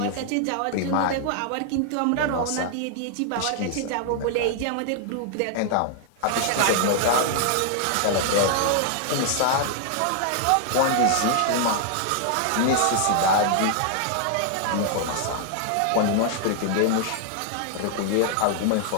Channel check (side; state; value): both; different; correlation 0.00